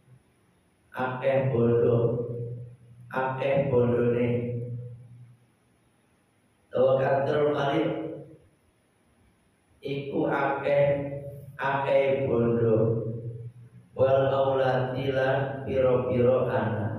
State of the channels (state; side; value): identical; both; correlation 1.00